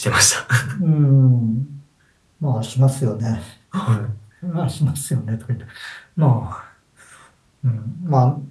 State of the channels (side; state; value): both; identical; correlation 1.00